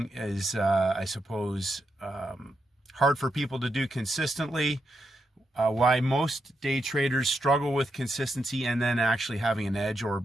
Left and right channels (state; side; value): normal; both; correlation 0.84